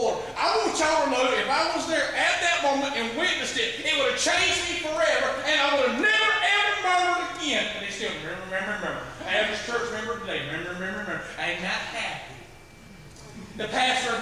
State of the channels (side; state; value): both; identical; correlation 1.00